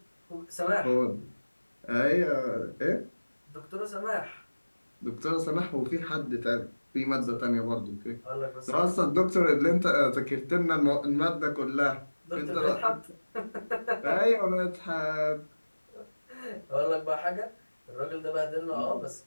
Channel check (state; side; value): inverted; both; correlation -1.00